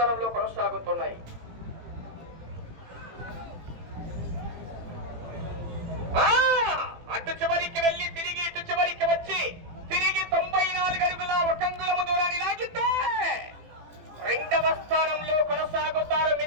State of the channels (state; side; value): late; left; 18 ms